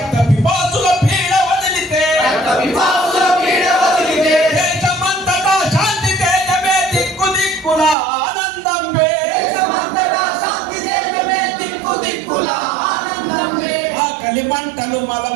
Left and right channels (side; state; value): left; drops out; at 8.0 s